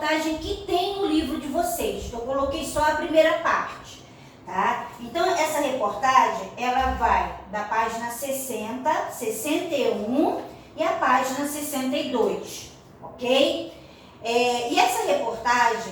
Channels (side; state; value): both; identical; correlation 1.00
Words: que tem no livro de vocês. Eu coloquei só a primeira parte, tá? Então, essa reportagem, ela vai da página 60, 61 e a página 62, ok? E essa reportagem